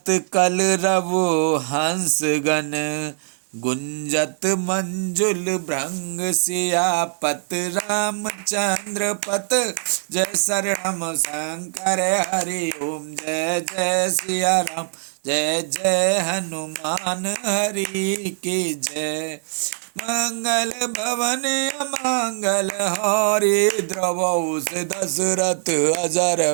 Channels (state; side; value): silent; left; digital silence